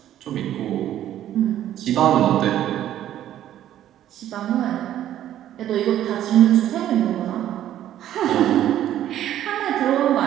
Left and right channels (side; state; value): left; quieter; 11.9 dB